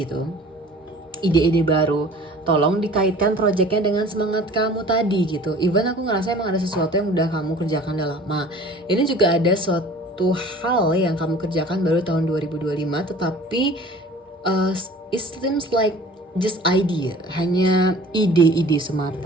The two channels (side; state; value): both; normal; correlation 0.46